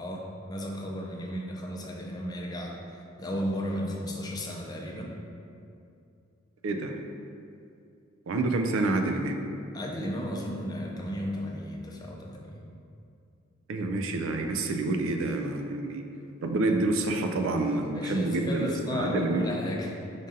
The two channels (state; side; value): normal; both; correlation 0.56